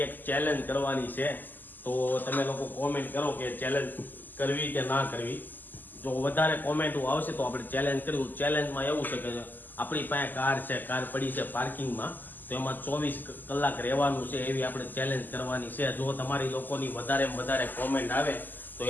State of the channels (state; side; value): late; right; 0.087 ms